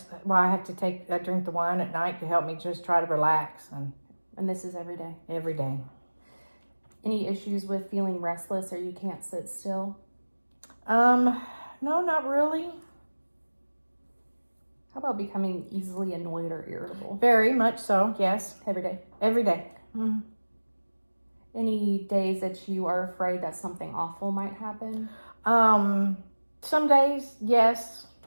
why I drink the wine at night to help me just try to relax. And this is every day? Every day. Any issues with feeling restless or you can't sit still? No, not really. How about becoming easily annoyed or irritable? Very much so, yes. Every day? Every day. Mm-hmm. Any days that you are afraid that something awful might happen? Some days, yes.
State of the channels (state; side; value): inverted; both; correlation -1.00